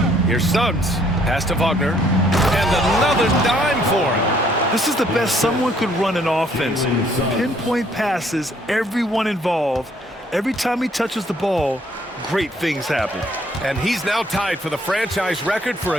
Here's Suggs. Pass to Wagner. And another dime for him. This is the best someone could run an offense. Pinpoint passes, everyone involved. Every time he touches the ball, great things happen. And he's now tied for the franchise record for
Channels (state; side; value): normal; both; correlation 0.64